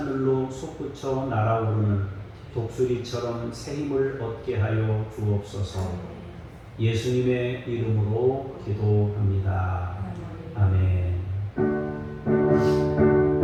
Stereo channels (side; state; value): both; identical; correlation 1.00